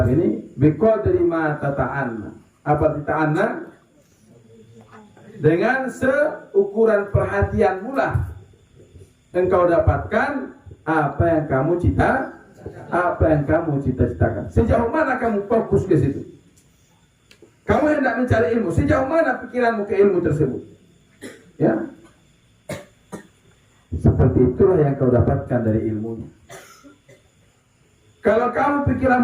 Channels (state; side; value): identical; both; correlation 1.00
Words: ini biqadri ma tata'anna. Apa tata'anna? Dengan seukuran perhatian pula engkau dapatkan apa yang kamu cita-citakan. Sejauh mana kamu fokus ke situ? Kamu hendak mencari ilmu, sejauh mana pikiranmu ke ilmu tersebut? Ya. Seperti itulah yang kau dapatkan dari ilmunya. Kalau kamu